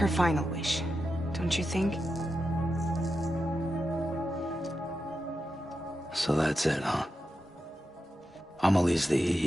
final wish, don't you think? So that's it, huh? Amelie's the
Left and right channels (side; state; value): both; normal; correlation 0.89